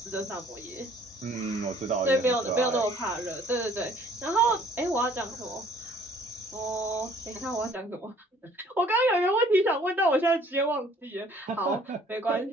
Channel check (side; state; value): both; normal; correlation 0.57